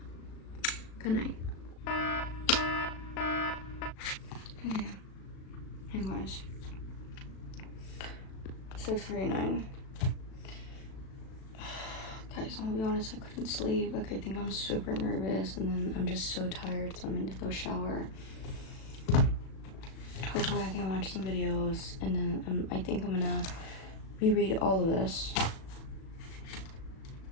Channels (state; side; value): late; right; 37 ms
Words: Good night. Okay, anyways, 6:49. Guys, I'm gonna be honest, I couldn't sleep. Like, I think I'm super nervous, and then I'm just so tired, so I'm gonna go shower. Hopefully I can watch some videos, and then I think I'm gonna reread all of this